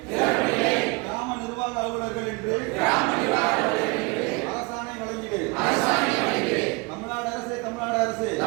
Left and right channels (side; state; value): left; quieter; 27.3 dB